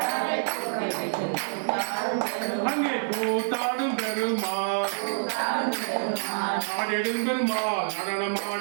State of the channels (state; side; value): silent; left; digital silence